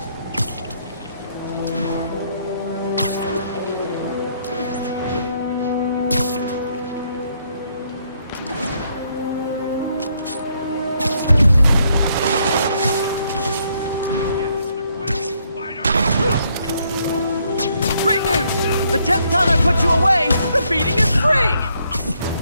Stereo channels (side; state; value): both; inverted; correlation -0.72